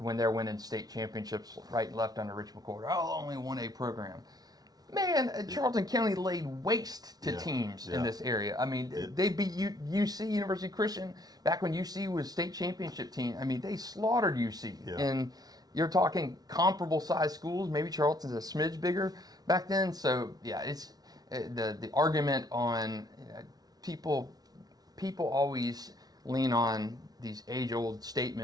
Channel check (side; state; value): left; late; 0.19 ms